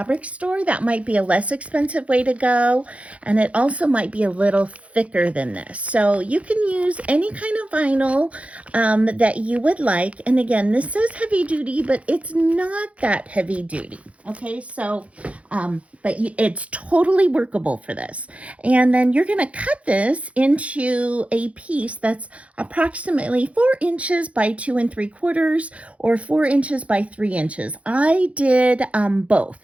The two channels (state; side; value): late; left; 0.064 ms